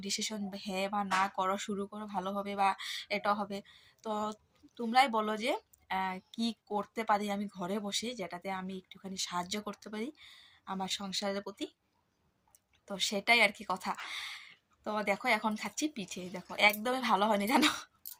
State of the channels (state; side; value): identical; both; correlation 1.00